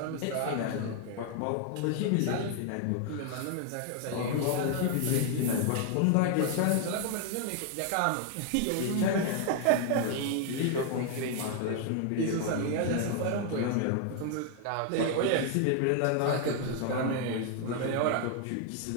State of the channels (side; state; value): both; different; correlation 0.00